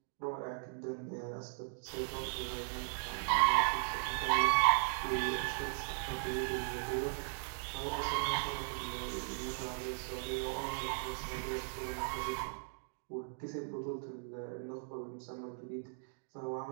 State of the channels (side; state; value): left; silent; digital silence